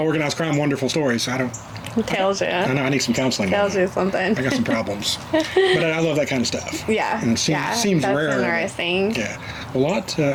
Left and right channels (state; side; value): identical; both; correlation 1.00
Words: organized crime wonderful stories. So I don't Tells you. I know I need some counseling. Tells you something. I got some problems. But I love that kind of stuff. Yeah. And it seems that's rare. Interesting. Yeah. A lot,